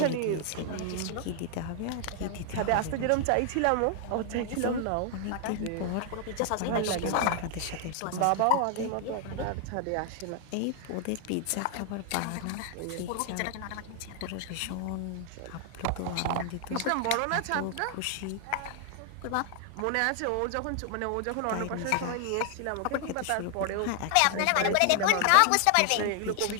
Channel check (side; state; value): both; different; correlation 0.00